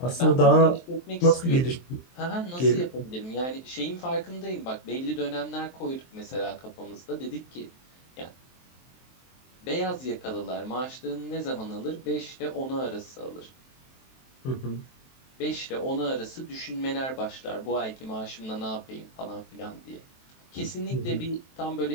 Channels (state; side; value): late; right; 23 ms